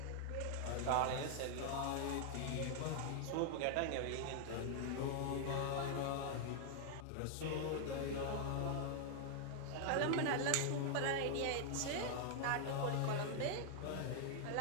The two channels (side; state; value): both; different; correlation 0.00